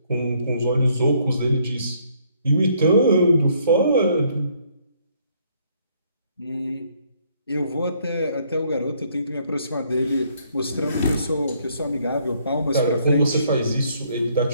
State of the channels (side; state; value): both; inverted; correlation -0.67